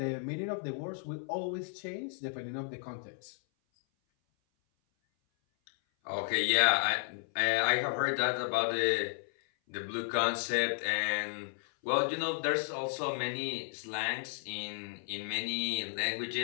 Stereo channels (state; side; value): silent; right; 55 dB below the other